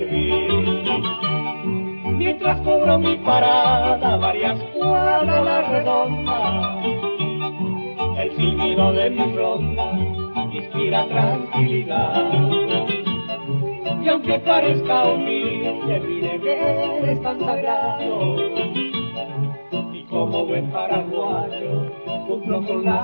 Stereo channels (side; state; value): both; inverted; correlation -1.00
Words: Mientras cubro mi parada varias cuadras a la redonda, el silbido de mi ronda inspira tranquilidad. Y aunque parezca humilde, mi deber es tan sagrado, y como buen paraguayo cumplo con